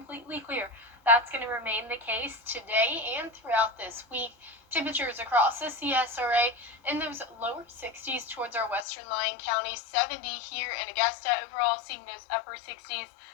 clear. That's going to remain the case today and throughout this week. Temperatures across the CSRA in those lower 60s towards our western Lyon County, 70 here in Augusta. Overall, seeing those upper 60s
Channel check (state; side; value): drops out; right; at 8.8 s